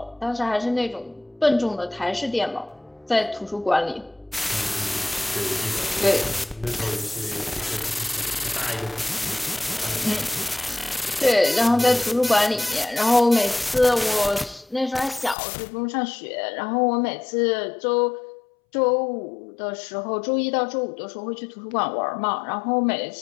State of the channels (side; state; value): right; drops out; at 15.4 s